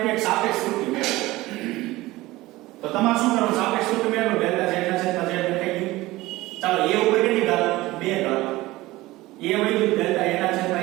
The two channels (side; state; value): left; quieter; 18.8 dB